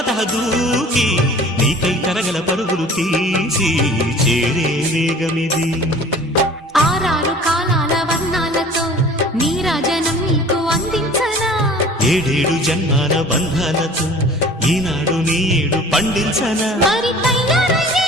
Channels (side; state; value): both; normal; correlation 0.46